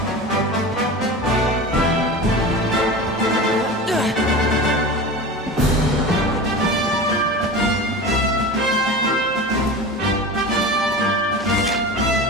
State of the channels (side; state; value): both; normal; correlation 0.31